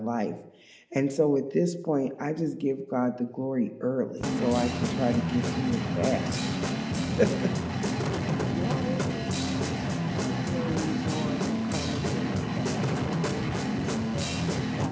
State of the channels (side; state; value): both; identical; correlation 1.00